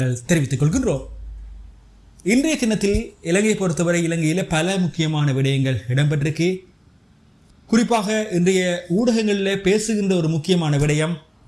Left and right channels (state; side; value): identical; both; correlation 1.00